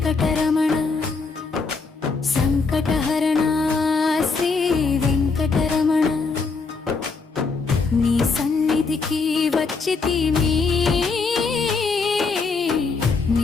సంకటహరణ శ్రీ వెంకటరమణ నీ సన్నిధికి వచ్చితిమి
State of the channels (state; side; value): quieter; right; 4.5 dB